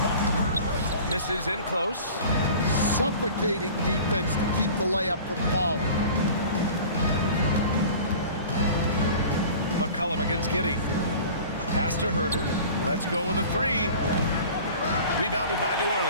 Misses in close. Suffocating defense to keep the layup from falling. McCollum against Giddey. Pass to Herder. Let's go with a three. Rebounded by New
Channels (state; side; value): inverted; both; correlation -0.42